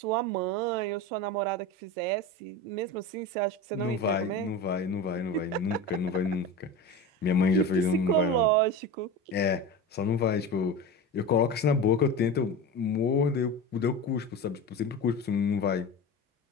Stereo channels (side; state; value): both; normal; correlation 0.27